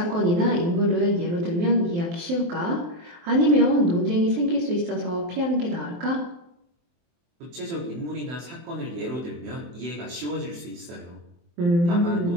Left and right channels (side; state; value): left; late; 23 ms